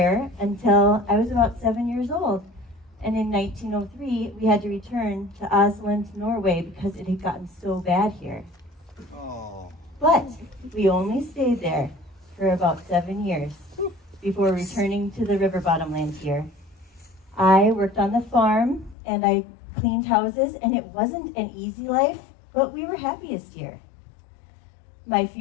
until I was about 7 years old. And in 1903, we had to return to Oslo, Norway, because it had gotten so bad here. Oh. But we only stayed there for about 7 years before returning to the river bottomland here. I worked on the farm and I cleaned houses, and it wasn't an easy life, but we were happiest here. My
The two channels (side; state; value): right; drops out; at 18.9 s